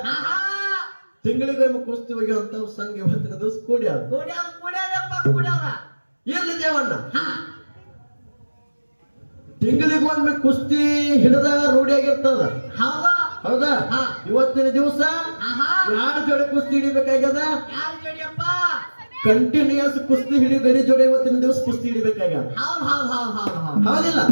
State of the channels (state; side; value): inverted; both; correlation -1.00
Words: ತಿಂಗಳಿಗೊಮ್ಮೆ ಕುಸ್ತಿ ಹೋಗಿವಂತ ಸಂಘ ಇವತ್ತಿನ ದಿವಸ ಕೂಡ್ಯಾರ. ಇರ್ಲಿ ದೇವಣ್ಣ, ತಿಂಗಳಿಗೊಮ್ಮೆ ಕುಸ್ತಿ ಹಿಡಿದ ರೂಢಿಯಾಗಿರ್ತದ. ಹೌದಾ? ಇವತ್ತಿನ ದಿವಸ ಯಾರ ಜೋಡಿ ಕುಸ್ತಿ ಹಿಡಿಬೇಕಾಗ್ಯದ? ಕಂಟಿನ್ಯೂಯಸ್ ಕುಸ್ತಿ ಹಿಡಿ ಗಡಿ ಜೋಡಿ ಇವತ್ತಿನ ದಿವಸ ಕುಸ್ತಿ ಹಿಡಿಬೇಕಾಗ್ಯದ. ಹೌದಿಲ್ಲ?